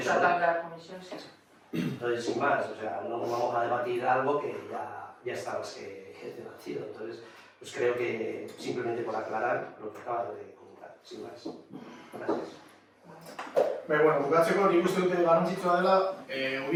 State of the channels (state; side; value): identical; both; correlation 1.00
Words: La comisión sí. Entonces, sin más, o sea, no vamos a debatir algo que ya está más que debatido. Entonces, pues creo que simplemente por aclarar lo que acabas de comentar, sin más. Gracias. Bueno, bukatzeko nik uste dute garrantzitsua dela